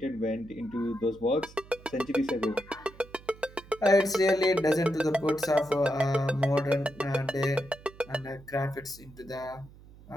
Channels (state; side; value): noise; right; hum, 21 dB below the sound